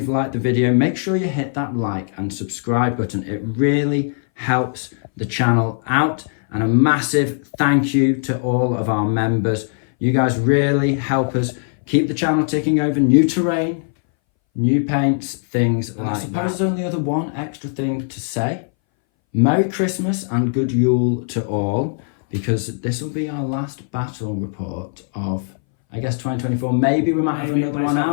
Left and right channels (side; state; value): right; silent; 62 dB below the other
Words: liked the video, make sure you hit that like and subscribe button. It really helps the channel out. And a massive thank you to all of our members. You guys really help us keep the channel ticking over. New terrain, new paints, things like that. I suppose there's only other one extra thing to say. Merry Christmas and good Yule to all, because this will be our last battle report of, I guess, 2024. Maybe we might have another one